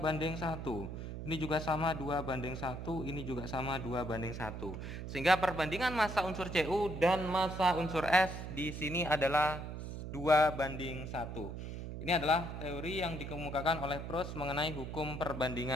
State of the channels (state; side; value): noise; right; hum, 7 dB below the sound